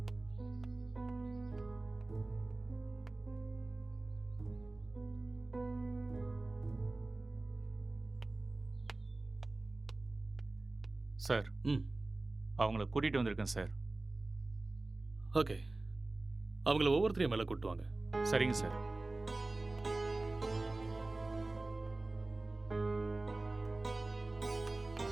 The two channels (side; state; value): left; quieter; 3.0 dB